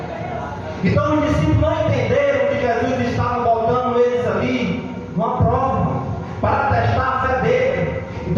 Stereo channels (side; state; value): both; identical; correlation 1.00